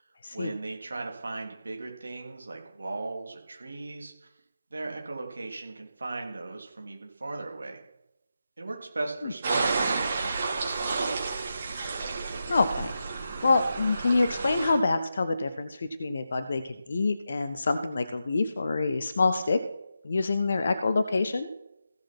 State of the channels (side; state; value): both; inverted; correlation -0.89